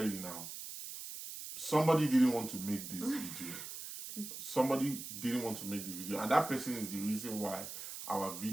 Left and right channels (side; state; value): right; noise; hiss, 9 dB below the sound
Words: you now. Somebody didn't want to make this video. Somebody didn't want to make the video. And that person is the reason why our